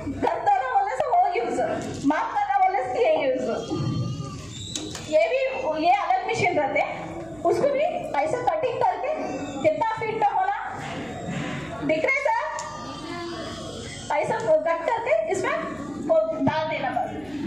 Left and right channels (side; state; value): right; noise; hum, 24 dB below the sound